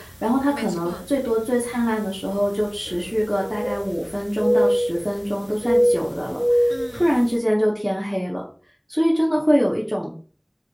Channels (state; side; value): identical; both; correlation 1.00